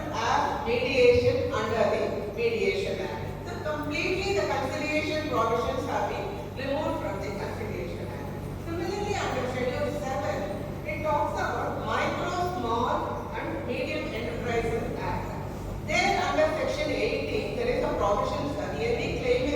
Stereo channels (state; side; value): identical; both; correlation 1.00